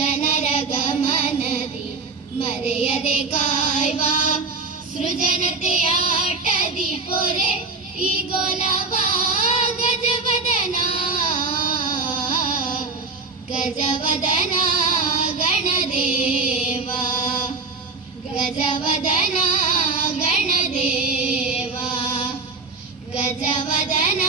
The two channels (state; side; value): quieter; left; 4.1 dB